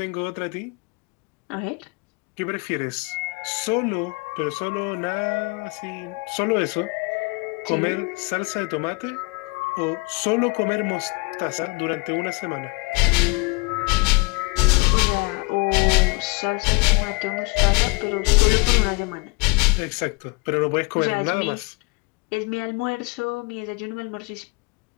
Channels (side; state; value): right; quieter; 29.8 dB